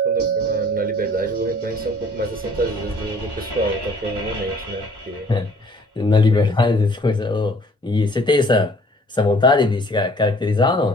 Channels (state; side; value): normal; both; correlation 0.55